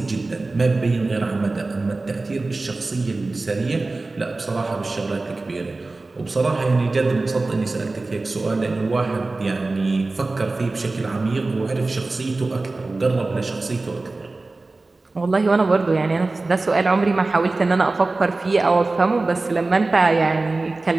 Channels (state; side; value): quieter; left; 3.3 dB